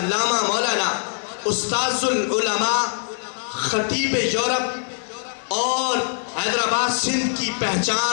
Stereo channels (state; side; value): silent; right; digital silence